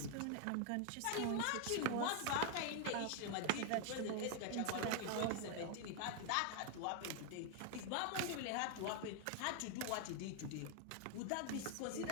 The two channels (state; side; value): different; both; correlation 0.00